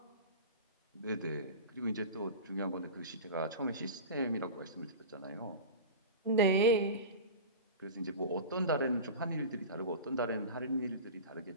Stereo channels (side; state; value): both; inverted; correlation -0.30